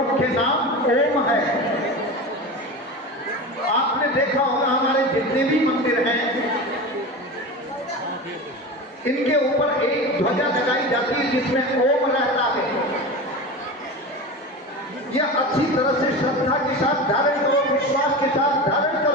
नाम ओम है। आपने देखा होगा हमारे जितने भी मंदिर हैं इनके ऊपर एक ध्वजा लगाई जाती है जिसमें ओम रहता है। यह अच्छी तरह से श्रद्धा के साथ धारण करो, विश्वास के साथ धारण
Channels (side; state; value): both; normal; correlation 0.28